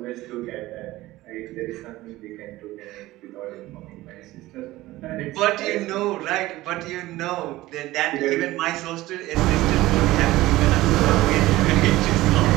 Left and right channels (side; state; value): left; quieter; 17.5 dB